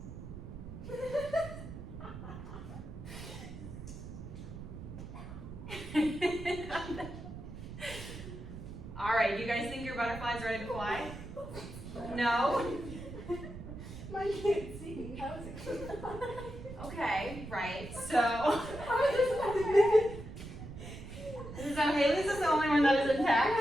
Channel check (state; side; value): noise; right; rumble, 11 dB below the sound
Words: All right, do you guys think your butterfly's ready to fly? No? Mine can't see. How is it going to fly? Okay, right, so. So Haley's is the only one that is intact?